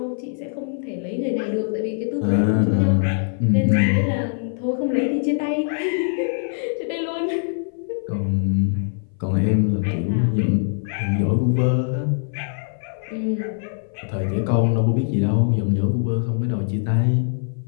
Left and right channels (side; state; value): right; silent; 58 dB below the other